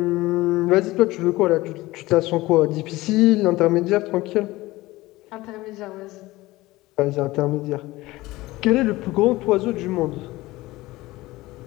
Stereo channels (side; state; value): right; quieter; 19.0 dB